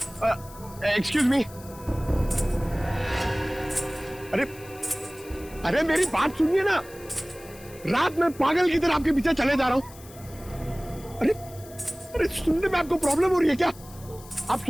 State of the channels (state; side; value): noise; left; hiss, 20 dB below the sound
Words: Excuse me. अरे अरे मेरी बात सुनिए ना। रात में पागल की तरह आपके पीछे चले जा रहा हूं। अरे अरे सुनने में आपको प्रॉब्लम हो रही है क्या? आप